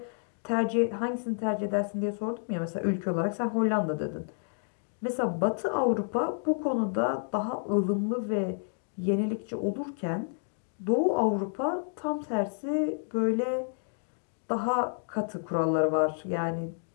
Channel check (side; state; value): right; silent; digital silence